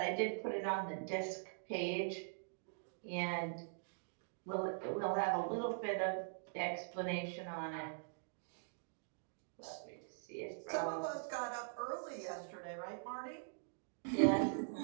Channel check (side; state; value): left; silent; digital silence